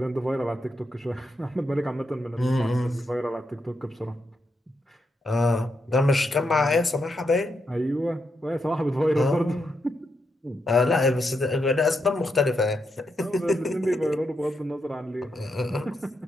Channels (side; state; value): both; normal; correlation 0.83